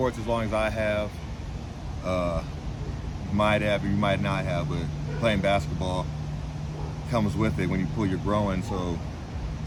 as long as I have, you might have or you might not have, but playing basketball comes with it when you pull your groin, so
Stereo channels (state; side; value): identical; both; correlation 1.00